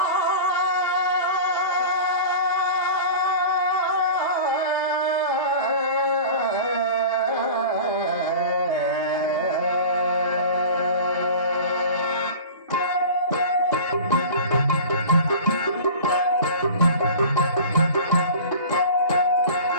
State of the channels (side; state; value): both; inverted; correlation -0.37